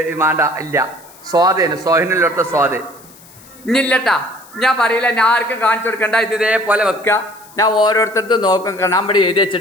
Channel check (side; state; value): left; noise; hiss, 23 dB below the sound